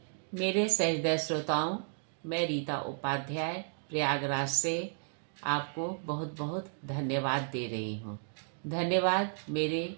मेरे सहृदय श्रोताओं, मैं रीता उपाध्याय प्रयागराज से आपको बहुत बहुत धन्यवाद दे रही हूँ। धन्यवाद मेरे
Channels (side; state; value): left; silent; digital silence